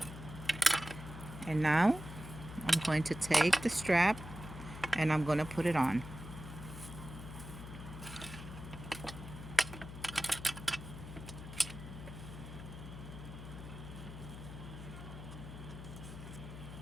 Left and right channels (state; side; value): noise; left; hum, 11 dB below the sound